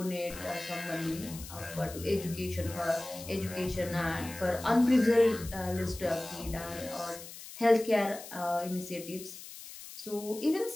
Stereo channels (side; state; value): left; noise; hiss, 14 dB below the sound